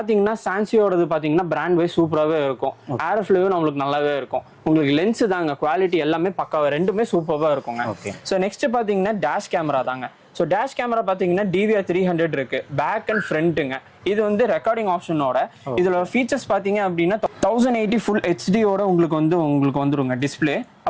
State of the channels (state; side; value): identical; both; correlation 1.00